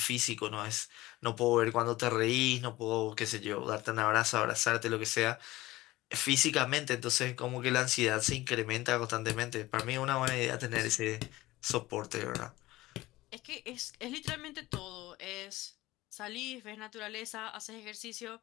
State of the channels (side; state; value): right; quieter; 18.2 dB